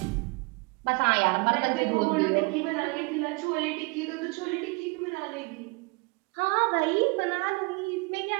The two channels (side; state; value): left; quieter; 28.5 dB